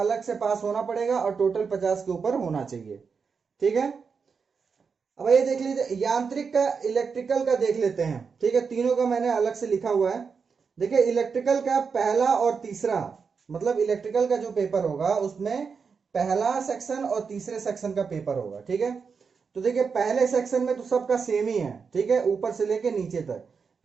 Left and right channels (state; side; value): quieter; left; 5.6 dB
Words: से पास होना पड़ेगा और टोटल 50 के ऊपर होना चाहिए। ठीक है, अब ये देख लीजिए यांत्रिक का, इलेक्ट्रिकल का देख लेते हैं। ठीक है, तीनों का मैंने अलग से लिखा हुआ है। देखिए इलेक्ट्रिकल का पहला और तीसरा, मतलब इलेक्ट्रिकल का जो पेपर होगा उसमें पहला सेक्शन और तीसरे सेक्शन का पेपर होगा। ठीक है, तो देखिए पहले सेक्शन में तो सबका सेम ही है। ठीक है, ऊपर से लेके नीचे तक।